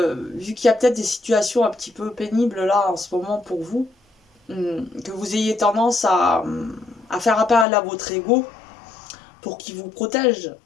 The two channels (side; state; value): right; drops out; at 7.7 s